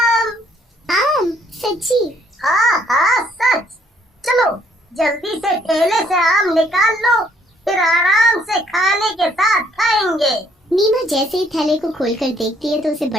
आम? सच्ची? हाँ सच। चलो जल्दी से ठेले से आम निकाल लो, फिर आराम से खाने के साथ खाएंगे। नीमा जैसे ही थैले को खोलकर देखती है तो उसे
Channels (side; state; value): both; normal; correlation 0.65